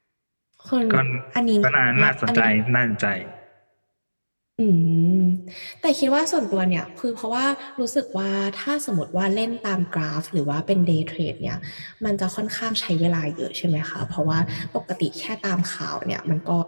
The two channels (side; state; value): both; inverted; correlation -1.00